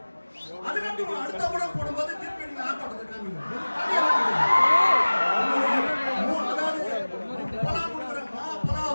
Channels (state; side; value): inverted; both; correlation -1.00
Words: அதுக்கப்புறம் அடுத்த படம் போடும்போது திருப்பி நீங்க ஆட்டத்தை காமிங்க.